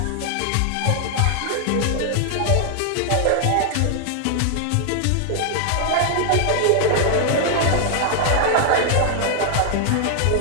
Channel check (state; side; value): different; both; correlation 0.00